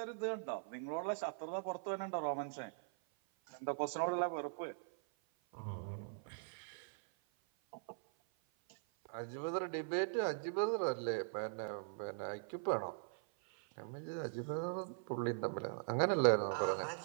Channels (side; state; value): left; silent; 50 dB below the other